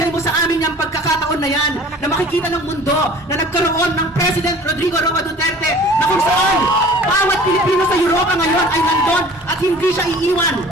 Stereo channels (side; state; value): both; normal; correlation 0.47